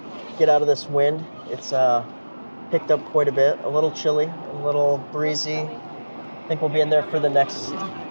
Get out of this wind. It's picked up quite a bit. A little chilly, a little breezy. I think we'll be in there for the next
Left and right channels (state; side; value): inverted; both; correlation -1.00